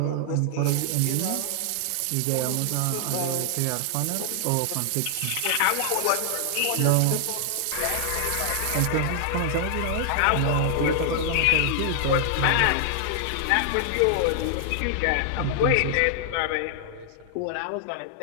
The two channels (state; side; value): different; both; correlation 0.00